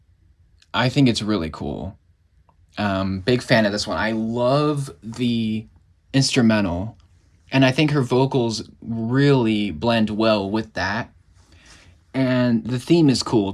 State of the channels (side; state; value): both; identical; correlation 1.00